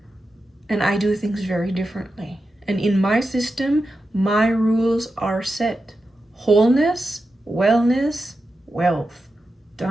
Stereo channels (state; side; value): normal; both; correlation 0.90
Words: And I do things very differently. And in my system, my rules are set. Wholeness, wellness, wealth.